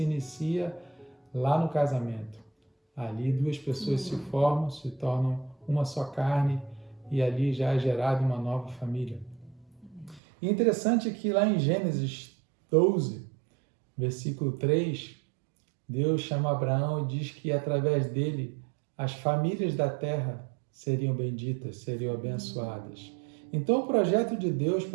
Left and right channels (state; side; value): drops out; left; at 10.2 s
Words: inicia lá no casamento. Ali 2 pessoas se formam, se tornam uma só carne, e ali já é gerada uma nova família. E interessante é que lá em Gênesis 12, versículo 3, Deus chama Abraão e diz que através dele as famílias da terra seriam benditas, seriam abençoadas. Então, o projeto de Deus